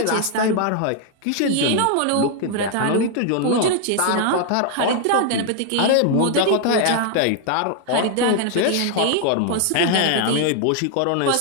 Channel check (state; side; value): different; both; correlation 0.00